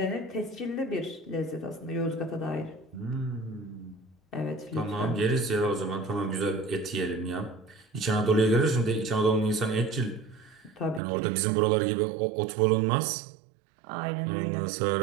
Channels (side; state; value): left; drops out; at 11.0 s